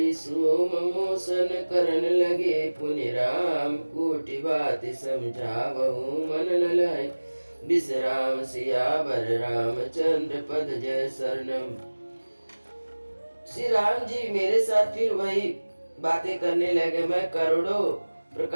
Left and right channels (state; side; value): inverted; both; correlation -1.00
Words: सोम मोसन करन लगे पुनि राम कोटि बात समझावहु मन न लाई विश्राम सियावर रामचंद्र पद जय शरणम। श्री राम जी मेरे साथ फिर वही बातें करने लगे। मैं करोड़ों